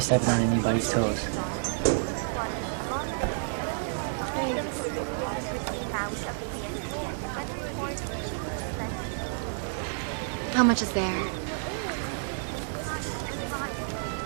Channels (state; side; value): silent; left; digital silence